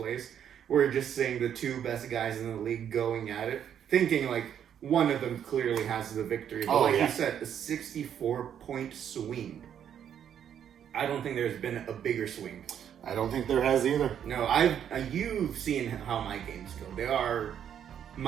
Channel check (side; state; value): left; quieter; 9.1 dB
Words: We're just seeing the 2 best guys in the league going at it, thinking like one of them clearly has the victory. But you said, a 64-point swing. I don't think there's been a bigger swing. I don't think there has either. No, you've seen how my games go.